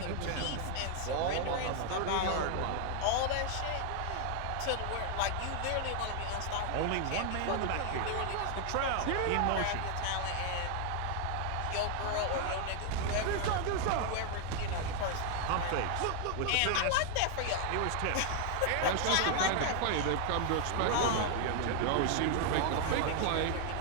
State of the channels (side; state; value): both; different; correlation 0.00